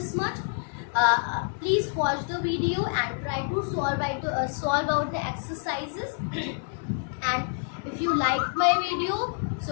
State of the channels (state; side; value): silent; right; 60 dB below the other